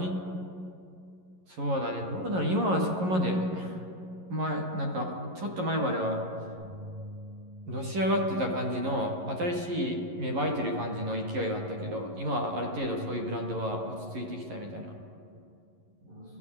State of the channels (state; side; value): late; left; 11 ms